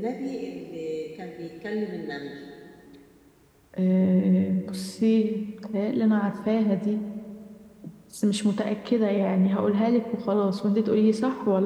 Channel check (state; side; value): identical; both; correlation 1.00